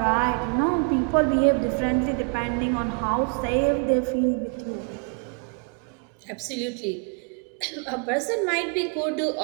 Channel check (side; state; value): left; quieter; 37.1 dB